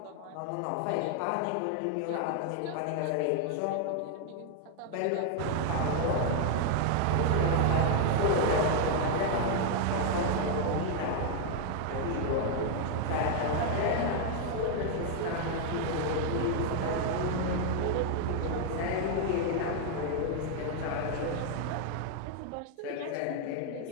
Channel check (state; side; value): different; both; correlation 0.00